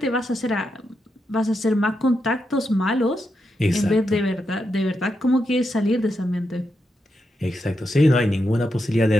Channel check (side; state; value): both; normal; correlation 0.85